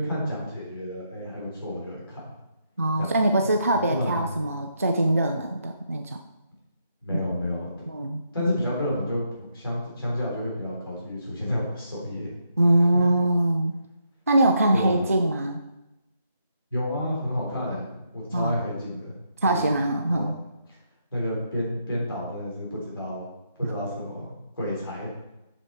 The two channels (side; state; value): both; inverted; correlation -0.78